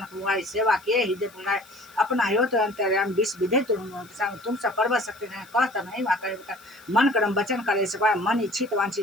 हुआ सेवा किए हृदय पुनाए अपना हो तो अंतर्याम विष विधे तुम सब पर्व सकते हैं कहता नहीं वहाँ मन कर्म वचन करे सपाए मन इच्छित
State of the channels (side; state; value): left; noise; hiss, 25 dB below the sound